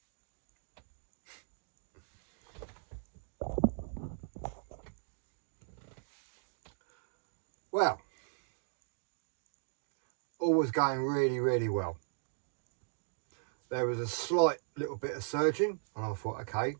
Well, all was going really, really well. There was a slight little bit of surging, and I thought, okay,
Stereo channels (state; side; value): silent; left; digital silence